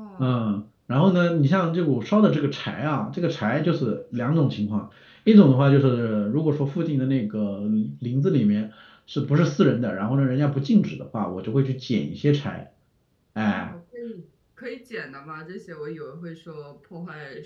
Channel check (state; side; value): identical; both; correlation 1.00